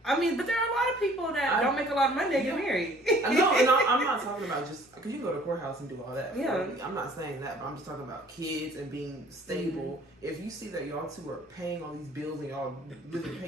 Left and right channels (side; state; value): both; normal; correlation 0.54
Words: I mean, but there are a lot of people that don't make a lot of money that get married. No, and I'm not talking about just because you can go to the courthouse and do all that. Yeah, I'm not saying that, but I'm just talking about kids and being stable. Mm-hmm. If you see that y'all two are paying all these bills and y'all living